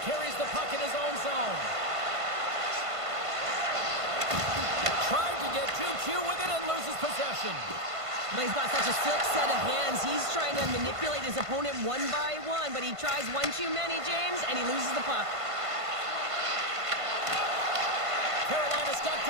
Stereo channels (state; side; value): late; left; 1.5 ms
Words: carries the puck in his own zone. Tried to get too cute with it and loses possession. But he's got such a slick set of hands. He's trying to manipulate his opponent one by one, but he tries one too many, James, and he loses the puck. Carolina's got